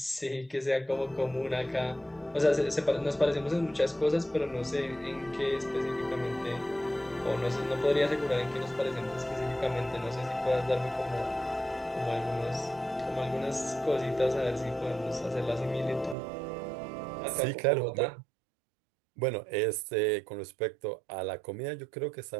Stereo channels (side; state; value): left; drops out; at 16.2 s